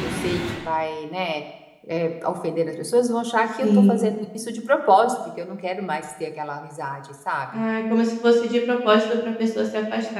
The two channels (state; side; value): identical; both; correlation 1.00